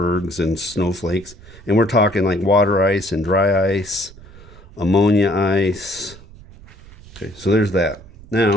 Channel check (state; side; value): noise; right; rumble, 20 dB below the sound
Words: and snowflakes. And we're talking like water ice and dry ice, ammonia ice. Okay, so there's that. Now,